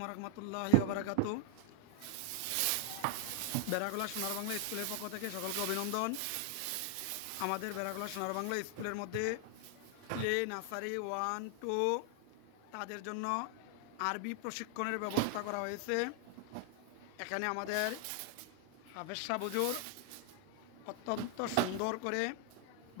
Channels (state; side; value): different; both; correlation 0.00